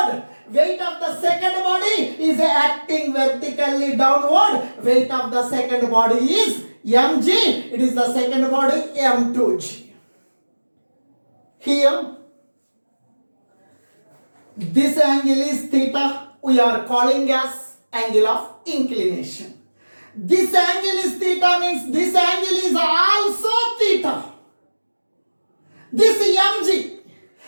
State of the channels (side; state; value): both; inverted; correlation -1.00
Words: Weight of the second body is acting vertically downward. Weight of the second body is mg. It is the second body m2g. Here, this angle is theta. We are calling as angle of inclination. This angle is theta means this angle is also theta. This mg